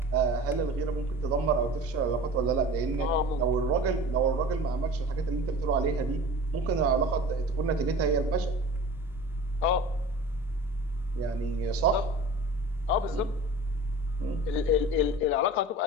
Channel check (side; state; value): both; normal; correlation 0.39